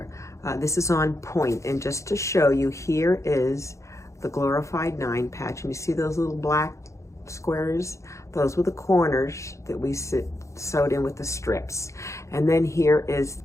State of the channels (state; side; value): late; right; 0.15 ms